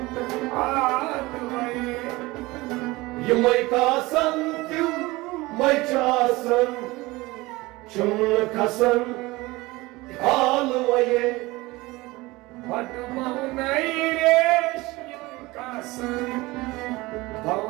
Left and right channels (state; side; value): quieter; left; 21.2 dB